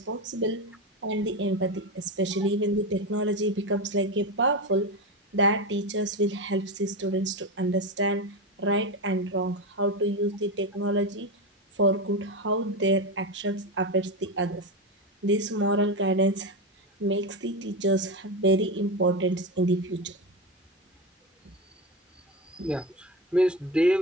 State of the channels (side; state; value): both; normal; correlation 0.17